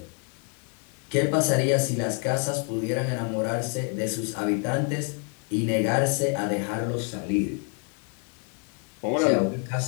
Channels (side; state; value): right; quieter; 38.5 dB